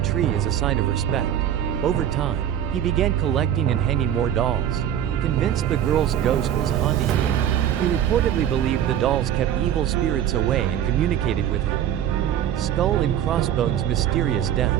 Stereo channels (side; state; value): left; quieter; 10.4 dB